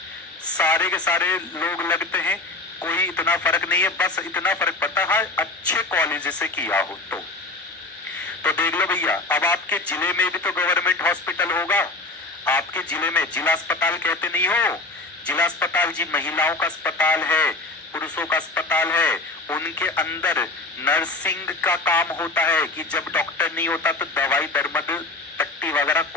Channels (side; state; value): right; quieter; 3.1 dB